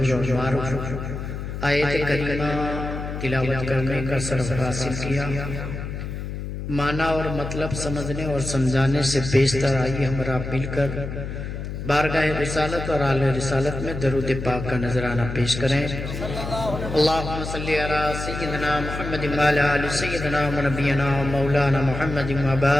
اور معروف آیت کریمہ تلاوت کرنے کا شرف حاصل کیا۔ معنی اور مطلب سمجھنے اور سمجھانے سے بیشتر آئیے ہمارا مل کر بارگاہ رسالت اور اعلی رسالت میں درود پاک کا نذرانہ پیش کریں۔ اللہم صلی علی سیدنا محمد وعلی آل سیدنا ونبینا مولانا محمد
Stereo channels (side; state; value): left; noise; hum, 6 dB below the sound